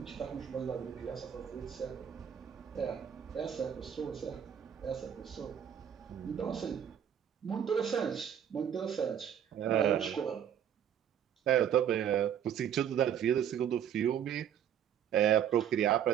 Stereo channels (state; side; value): quieter; left; 9.2 dB